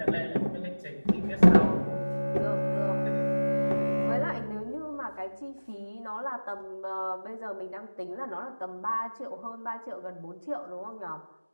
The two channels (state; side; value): inverted; both; correlation -1.00